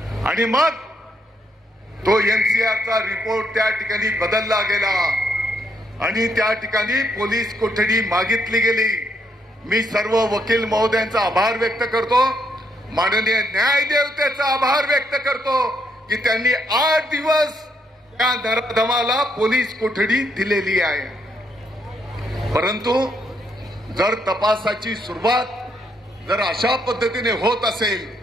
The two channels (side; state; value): both; normal; correlation 0.74